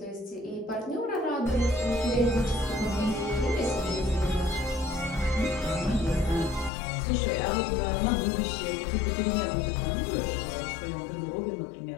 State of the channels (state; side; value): drops out; right; at 6.7 s